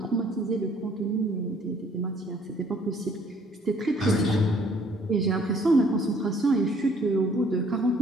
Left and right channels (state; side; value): normal; both; correlation 0.61